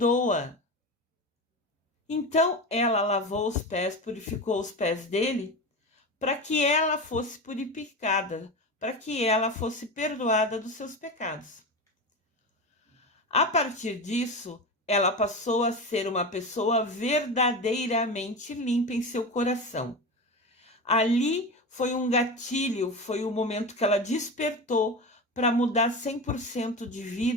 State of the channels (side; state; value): both; normal; correlation 0.24